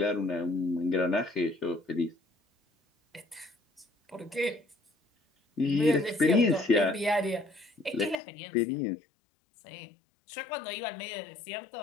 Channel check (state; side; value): drops out; right; at 8.2 s